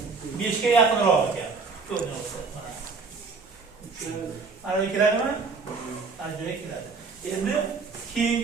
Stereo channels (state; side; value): quieter; left; 4.6 dB